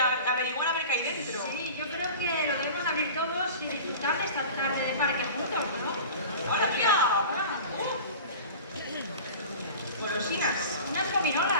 a ver qué hay dentro. Sí, yo creo que lo debemos abrir todos y disfrutar de esta tarde de parque juntos, ¿no? ¡Hola, mira! Golosinas. Unas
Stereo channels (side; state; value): both; inverted; correlation -0.37